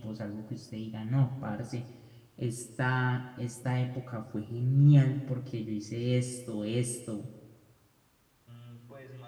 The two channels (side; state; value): both; identical; correlation 1.00